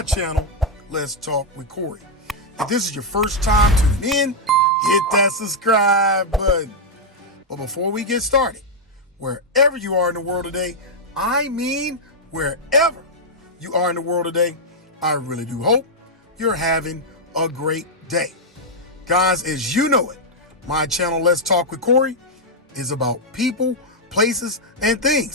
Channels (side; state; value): both; normal; correlation -0.04